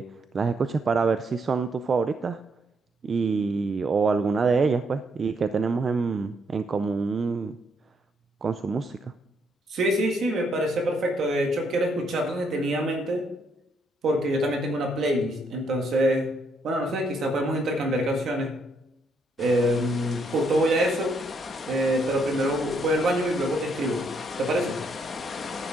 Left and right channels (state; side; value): normal; both; correlation 0.73